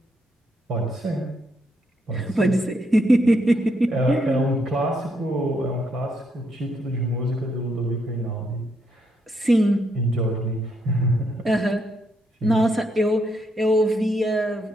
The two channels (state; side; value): normal; both; correlation 0.76